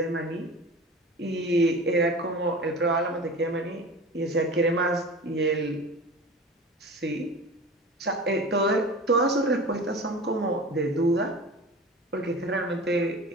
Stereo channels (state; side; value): normal; both; correlation 0.35